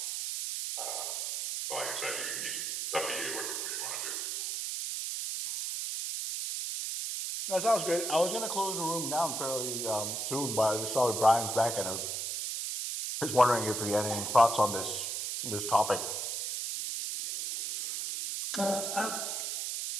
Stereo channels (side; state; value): right; noise; hiss, 2 dB below the sound